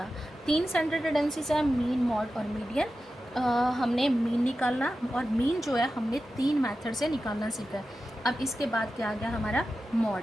3 सेंट्रल टेंडेंसीज है, मीन, मॉड और मीडियन। हमने मीन निकालना और मीन जो है हमने 3 मेथड से निकालना सीखा है। अब इसके बाद क्या आ गया हमारा मॉड।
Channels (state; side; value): normal; both; correlation 0.92